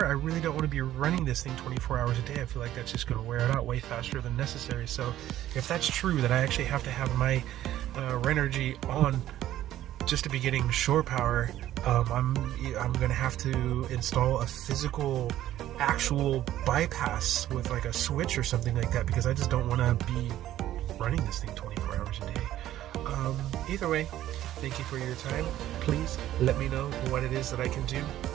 I really don't want to be running this thing 24 hours a day. I feel like that's just going to wear it out way faster than necessary. So if that's true, that I actually have to have my Renogy on just to be getting shore power, I'm gonna have to install a physical actual bypass with like a switch or something like that, because I just don't want to be running this thing 24 hours a day. Either way, thank you for your time. Please let me know what it is that I can do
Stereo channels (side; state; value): left; quieter; 13.2 dB